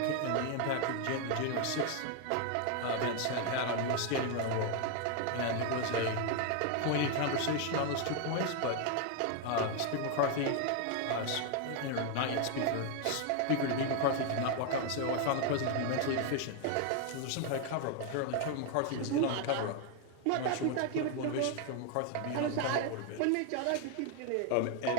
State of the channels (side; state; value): both; different; correlation 0.01